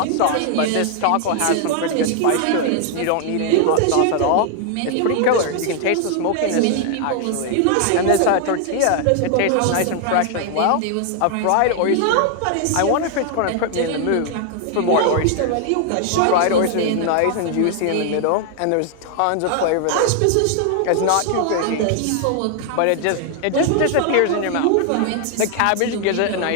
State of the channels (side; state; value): both; different; correlation 0.00